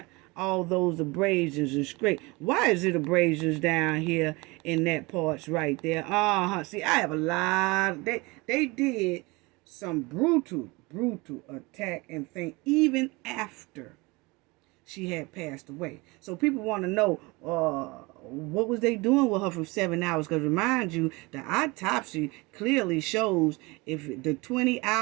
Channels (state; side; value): quieter; left; 24.8 dB